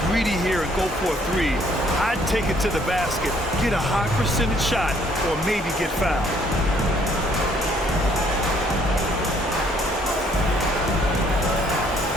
greedy here and go for a three. I'd take it to the basket, get a high percentage shot, or maybe get fouled.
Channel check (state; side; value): normal; both; correlation 0.64